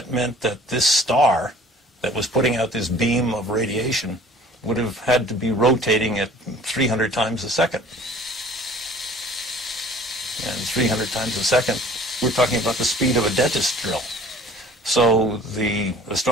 meant that this star that was putting out this beam of radiation would have had to be rotating at 300 times a second. And 300 times a second, we're talking about the speed of a dentist drill. So the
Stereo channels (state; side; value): normal; both; correlation 0.50